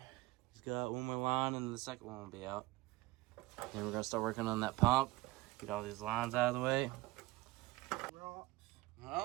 He's got one more line, and the second one will be out. Then we're gonna start working on that pump. Get all these lines out of the way.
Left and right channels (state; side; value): quieter; left; 20.0 dB